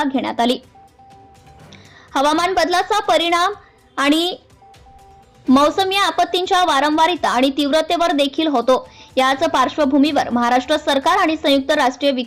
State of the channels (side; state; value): both; identical; correlation 1.00